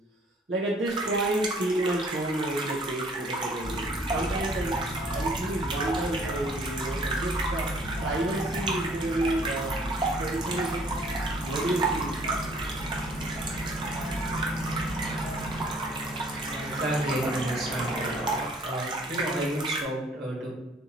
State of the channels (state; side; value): normal; both; correlation 0.58